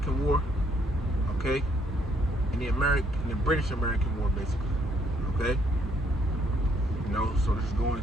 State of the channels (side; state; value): both; normal; correlation 0.69